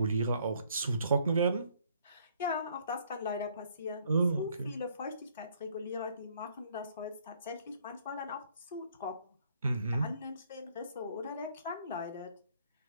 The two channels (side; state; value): both; inverted; correlation -0.64